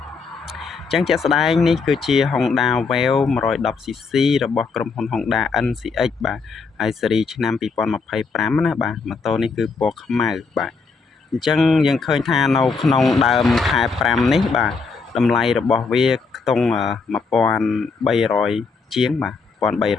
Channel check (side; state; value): right; quieter; 4.7 dB